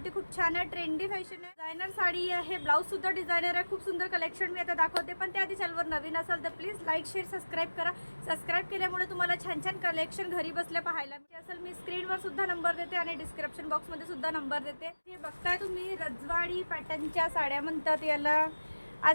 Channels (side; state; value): both; inverted; correlation -1.00